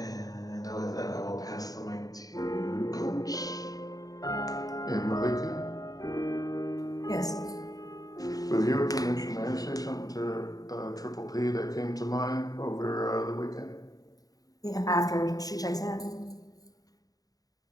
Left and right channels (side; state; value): right; late; 0.18 ms